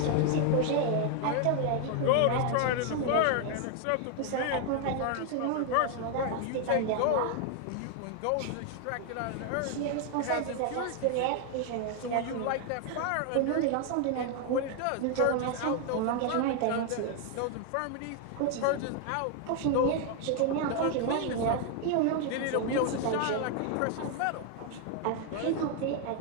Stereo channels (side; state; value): both; different; correlation 0.00